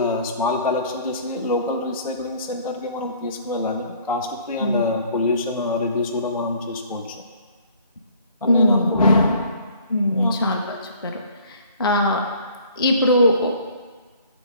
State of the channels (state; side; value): inverted; both; correlation -0.55